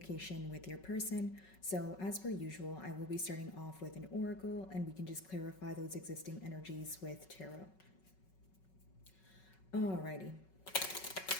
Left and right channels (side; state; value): right; late; 5.4 ms